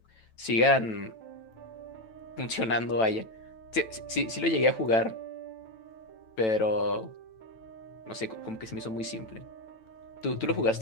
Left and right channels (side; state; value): right; late; 9.1 ms